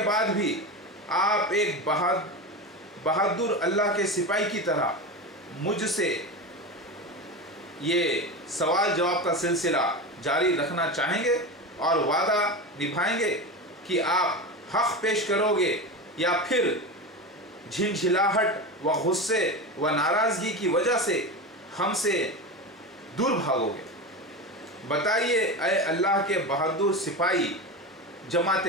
बाद भी आप एक बहादुर अल्लाह के सिपाही की तरह मुझसे ये सवाल जवाब का सिलसिला जारी रखना चाहेंगे और वादा निभाएंगे कि आप हक़ पेश करोगे, या फिर झिलझिलाहट व गुस्से व नाराज़गी की वजह से हमसे दूर भागोगे? बताइए ऐ अल्लाह के बहादुर सिपाही जमात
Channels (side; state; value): both; normal; correlation 0.23